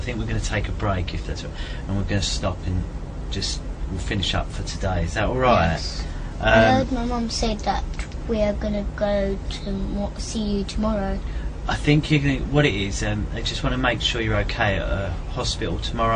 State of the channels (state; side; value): identical; both; correlation 1.00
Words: think we're going to take a break if that's all, and we're going to stop and we'll finish up for today. Is that alright? Yes. I heard my mum say that we are going to go to see you tomorrow. I think what it is, they just want to make sure you're okay at a hospital